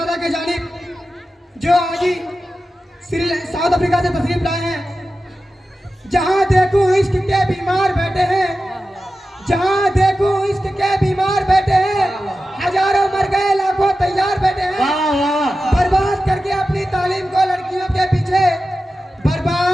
के जानिब, जो आज ही साउथ अफ्रीका से तशरीफ लाए हैं। जहां देखूं इश्क के बीमार बैठे हैं, जहां देखूं इश्क के बीमार बैठे हैं। हजारों मर गए लाखों तैयार बैठे हैं। वाह वाह। बर्बाद करके अपनी तालीम को लड़कियों के पीछे,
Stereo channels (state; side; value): normal; both; correlation 0.93